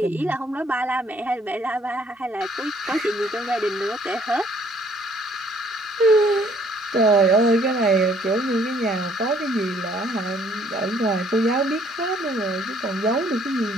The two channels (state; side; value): normal; both; correlation 0.62